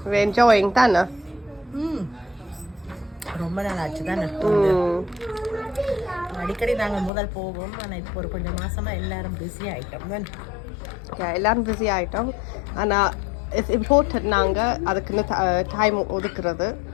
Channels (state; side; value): drops out; right; at 7.1 s